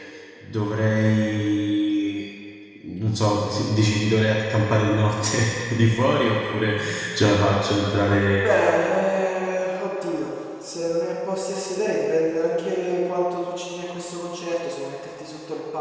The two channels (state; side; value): identical; both; correlation 1.00